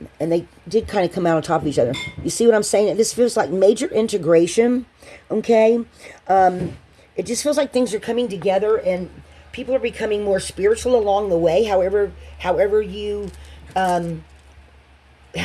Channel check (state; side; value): identical; both; correlation 1.00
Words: and they did kind of come out on top of each other. You see what I'm saying? This feels like major integration. Okay. It just feels like things are coming together, and people are becoming more spiritual along the way. However you